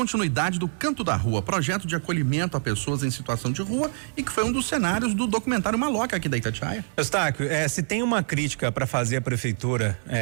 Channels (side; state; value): left; silent; 61 dB below the other